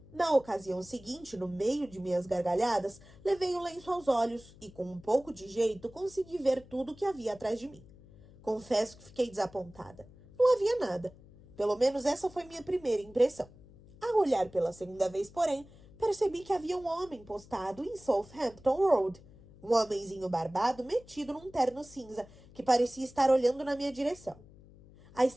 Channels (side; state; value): left; noise; hum, 22 dB below the sound